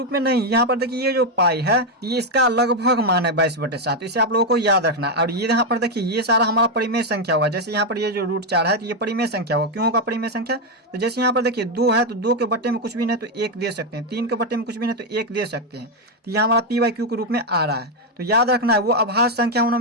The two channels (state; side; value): normal; both; correlation 0.04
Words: में नहीं, यहाँ पर देखिए ये जो पाई है ये इसका लगभग मान है 22/7। इसे आप लोगों को याद रखना। और ये यहाँ पर देखिए ये सारा हमारा परिमेय संख्या होगा। जैसे यहाँ पर ये जो √4 है तो ये परिमेय संख्या होगा। क्यों होगा परिमेय संख्या, तो जैसे यहाँ पर देखिए 2 है तो 2 के बट्टे में कुछ भी नहीं तो 1 दे सकते हैं, 3 के बट्टे में कुछ भी नहीं तो 1 दे सकते हैं। तो यह हमारा p/q के रूप में आ रहा है। तो याद रखना है वो अभाज्य संख्या